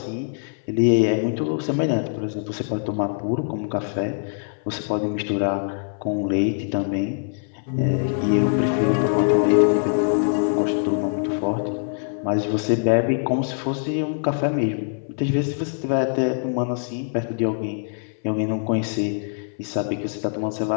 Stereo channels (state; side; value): silent; right; 61 dB below the other